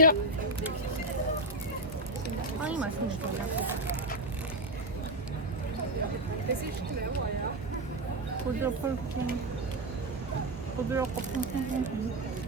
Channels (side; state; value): both; normal; correlation 0.08